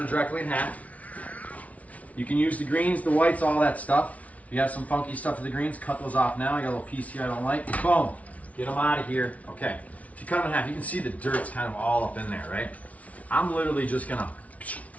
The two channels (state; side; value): late; right; 0.068 ms